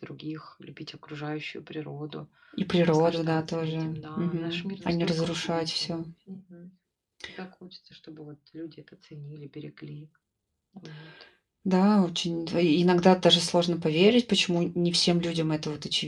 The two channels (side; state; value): both; identical; correlation 1.00